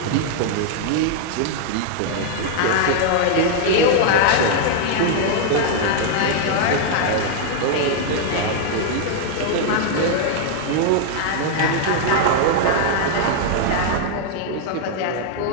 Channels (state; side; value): different; both; correlation 0.00